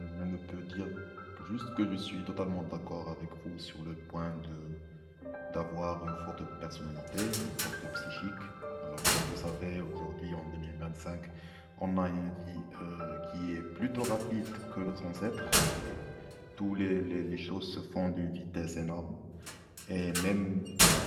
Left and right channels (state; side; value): identical; both; correlation 1.00